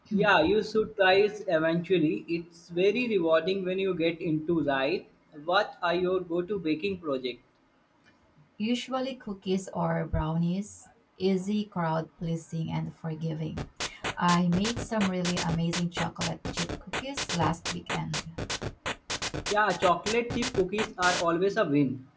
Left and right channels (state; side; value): identical; both; correlation 1.00